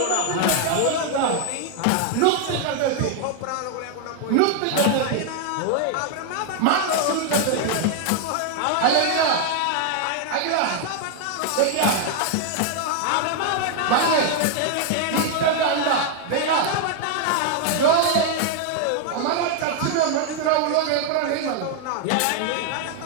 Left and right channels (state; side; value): different; both; correlation 0.00